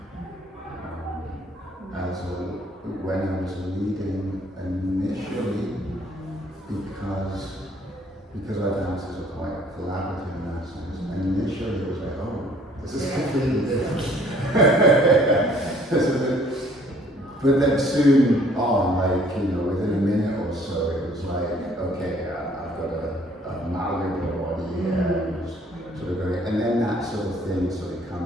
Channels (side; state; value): both; normal; correlation 0.59